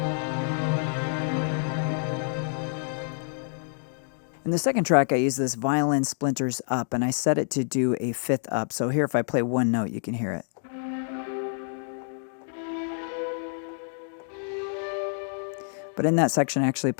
And In the second track, I use this violin splinters up, and I set it to do a fifth up. So here, if I play one note, you can hear it. But in that section, I actually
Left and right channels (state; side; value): silent; right; digital silence